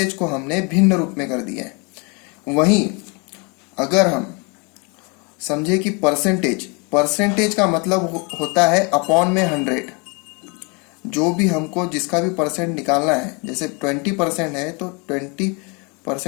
को हमने भिन्न रूप में कर दिया है। वहीं अगर हम समझे कि परसेंटेज का मतलब होता है अपॉन में 100। जो भी हमको जिसका भी परसेंट निकालना है, जैसे 20% है तो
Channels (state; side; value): quieter; right; 31.8 dB